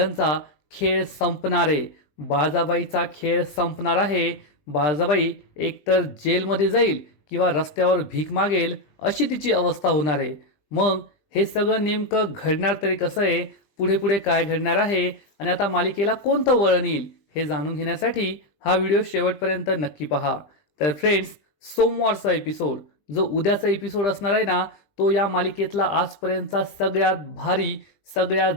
खेळ संपणार आहे. बाळाबाईचा खेळ संपणार आहे. बाळाबाई एकतर जेलमध्ये जाईल किंवा रस्त्यावर भीक मागेल अशी तिची अवस्था होणार आहे. मग हे सगळं नेमकं घडणार तरी कसं आहे, पुढे पुढे काय घडणार आहे आणि आता मालिकेला कोणतं वळण येईल हे जाणून घेण्यासाठी हा व्हिडिओ शेवटपर्यंत नक्की पहा. तर फ्रेंड्स, सोमवारचा एपिसोड जो उद्याचा एपिसोड असणार आहे ना, तो या मालिकेतला आजपर्यंतचा सगळ्यात भारी, सगळ्यात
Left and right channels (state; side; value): late; right; 20 ms